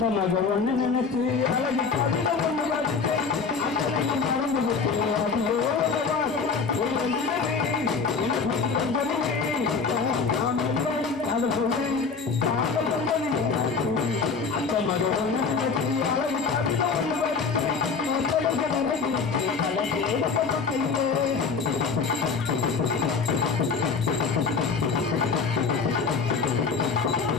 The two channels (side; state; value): right; quieter; 5.1 dB